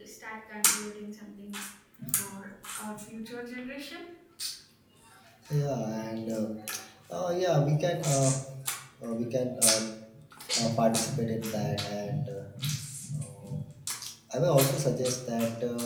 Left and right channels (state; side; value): identical; both; correlation 1.00